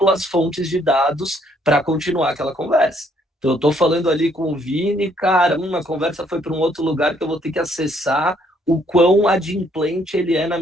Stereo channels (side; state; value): both; normal; correlation 0.67